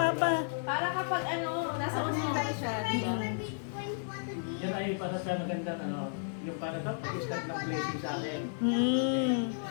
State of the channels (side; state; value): right; silent; digital silence